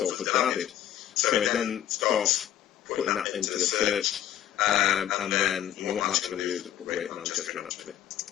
added. So it then starts putting that into the search, and then what I'm actually going to do is put Greater Manchester in, actually.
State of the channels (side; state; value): right; quieter; 11.5 dB